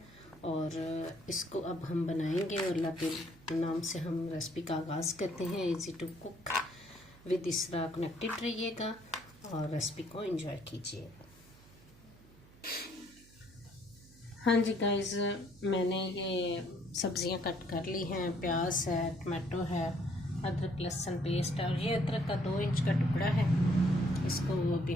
और इसको अब हम बनाएंगे। और अल्लाह के नाम से हम रेसिपी का आगाज़ करते हैं। इजी टू कुक विद इसरा कनेक्टेड रहिएगा और रेसिपी को एंजॉय कीजिए। हाँ जी गाइस, मैंने ये सब्ज़ियां कट कर ली हैं। प्याज है, टमाटो है, अदरक लहसुन पेस्ट है और ये अदरक का 2 इंच का टुकड़ा है। इसको अभी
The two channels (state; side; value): noise; right; hum, 24 dB below the sound